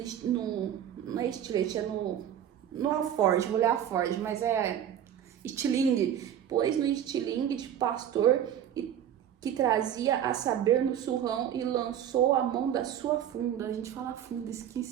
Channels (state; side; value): quieter; left; 10.0 dB